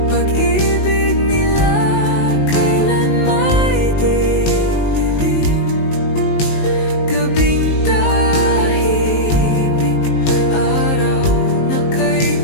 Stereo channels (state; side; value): late; right; 19 ms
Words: Pag-ibig nila, kailan may di lilim. Gabing tahimik, araw na kay